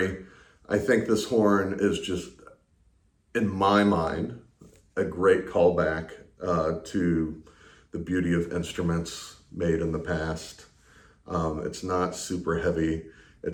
I think this horn is just, in my mind, a great callback to the beauty of instruments made in the past. It's not super heavy.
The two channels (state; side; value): identical; both; correlation 1.00